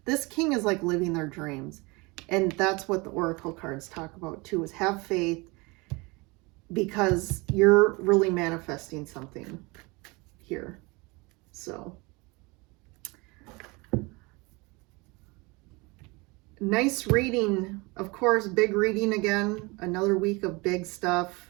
this king is like living their dreams. And that's what the Oracle cards talk about too, is have faith, because you're really manifesting something here. So nice reading. Of course, big reading again. Another week of big stuff.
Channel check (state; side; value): quieter; left; 26.1 dB